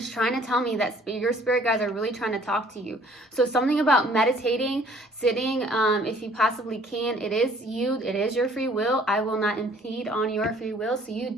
trying to tell me that your spirit guides are really trying to talk to you. So something about meditating, sitting, if you possibly can. It is you, it is your free will. I will not impede on your free will, so you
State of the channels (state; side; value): normal; both; correlation 0.57